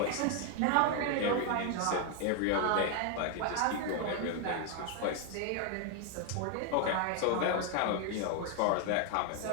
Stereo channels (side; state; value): both; different; correlation 0.01